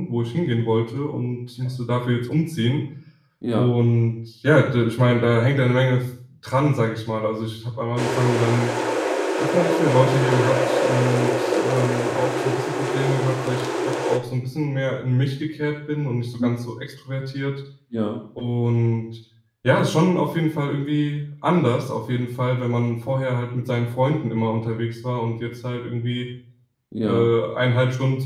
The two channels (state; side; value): identical; both; correlation 1.00